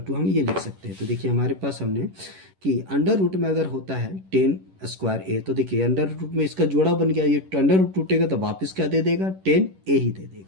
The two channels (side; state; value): left; late; 11 ms